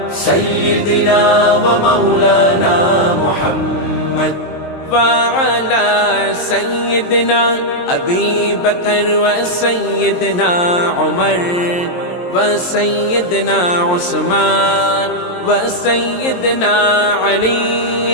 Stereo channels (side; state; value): right; late; 23 ms